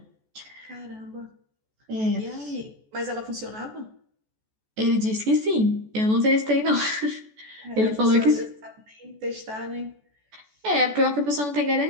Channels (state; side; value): late; left; 14 ms